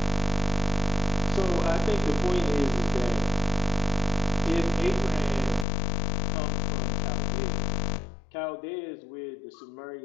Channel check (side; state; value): right; drops out; at 5.7 s